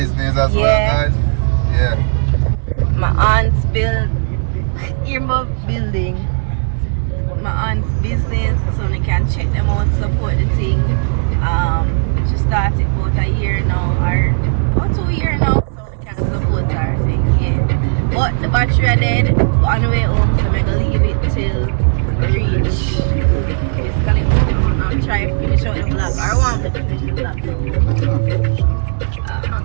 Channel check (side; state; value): left; silent; digital silence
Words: as Yeah. well, guys. Yeah. My aunt's building. My aunt's business, so you can check them out, support the thing. She started about a year now, or about 2 years now, so you can support her thing, yeah. But the battery are dead on the way home, so I'm gonna leave it till we reach basically home. I'm trying to finish out the vlog. I want to finish the vlog.